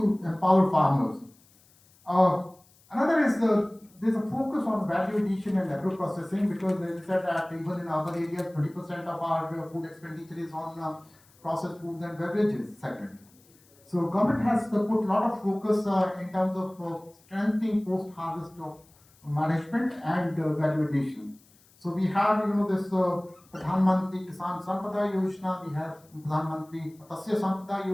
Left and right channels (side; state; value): left; noise; hiss, 30 dB below the sound